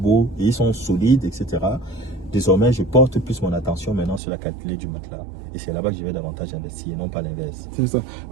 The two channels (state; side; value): drops out; left; at 4.2 s